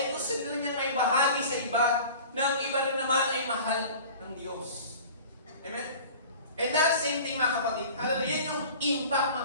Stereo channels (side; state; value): both; inverted; correlation -0.41